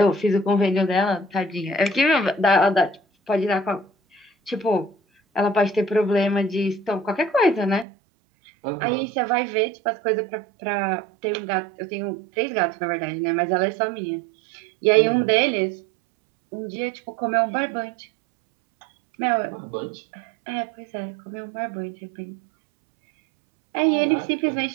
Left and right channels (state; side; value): drops out; left; at 7.9 s